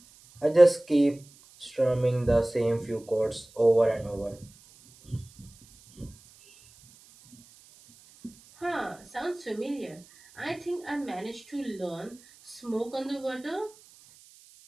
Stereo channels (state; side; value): noise; right; hiss, 25 dB below the sound